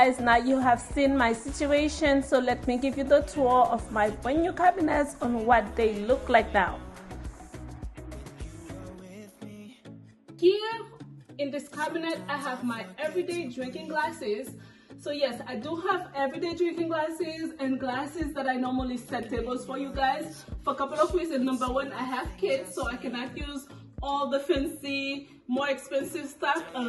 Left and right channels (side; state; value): both; identical; correlation 1.00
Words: now you have seen my situation, so let me give you the tour of my brand new cabinets on what they look like now. Here in this cabinet, I have my everyday drinking glasses. So yes, I do have everyday drinking glasses and glasses that I normally set tables for you guys for a couple of reasons. Number one, I have kids, so I cannot use all the fancy, more expensive stuff. A